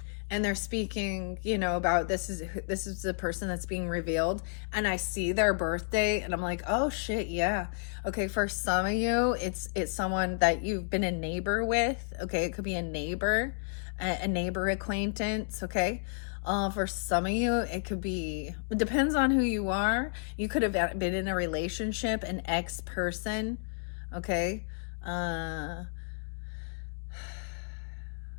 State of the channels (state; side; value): silent; right; digital silence